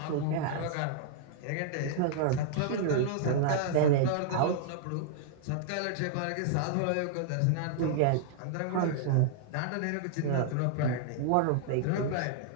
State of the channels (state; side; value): different; both; correlation -0.01